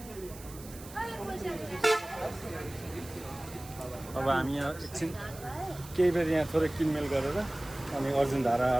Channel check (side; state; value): right; noise; hiss, 17 dB below the sound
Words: अब हामी यहाँ एकछिन केही बेर यहाँ थोरै किनमेल गरेर अनि अर्जुन